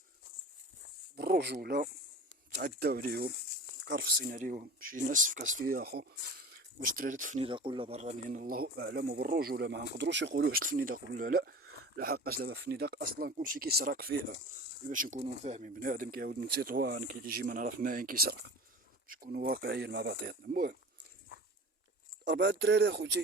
بالرجولة. تعداو عليهم كرفصين عليهم شي ناس في كاس فيا اخو. واش دراري الفنيدق ولا برانيين الله اعلم، وبالرجوله ما نقدروش يقولوا واش الفنيدق ولا لا. لحقاش دابا الفنيدق اصلا كلشي كيسرق فيها، باش نكونوا فاهمين. بنادم كيعاود من تطوان كيجي ما نعرف ماين كيسرق، باش نكونوا واقعيين مع بعضياتنا. المهم 4 دراري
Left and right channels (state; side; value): normal; both; correlation 0.36